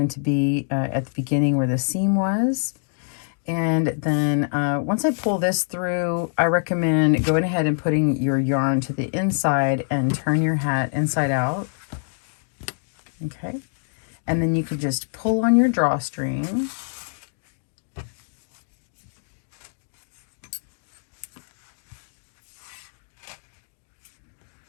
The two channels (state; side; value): silent; right; digital silence